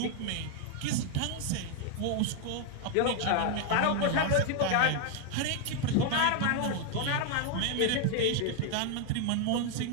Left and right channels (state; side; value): different; both; correlation 0.00